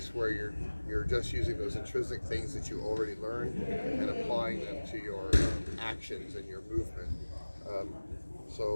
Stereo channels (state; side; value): inverted; both; correlation -1.00